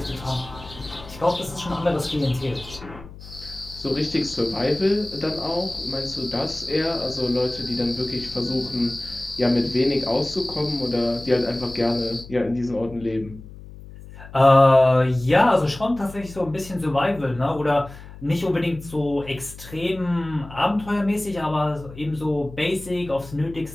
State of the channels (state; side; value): noise; left; hum, 16 dB below the sound